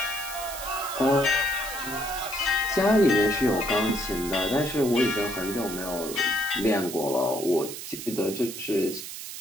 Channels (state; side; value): noise; right; hiss, 9 dB below the sound